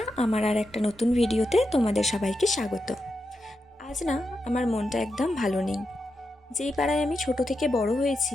আমার আর একটা নতুন ভিডিওতে তোমাদের সবাইকে স্বাগত। আজ না আমার মনটা একদম ভালো নেই। যেই পাড়ায় আমি ছোট থেকে বড়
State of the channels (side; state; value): both; normal; correlation 0.87